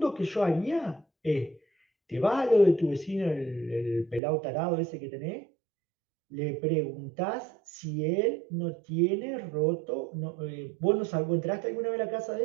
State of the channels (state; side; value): drops out; left; at 4.2 s